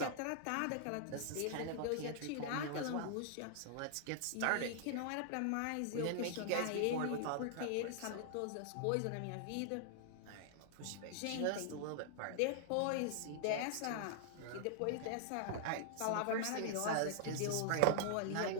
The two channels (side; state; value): both; different; correlation -0.01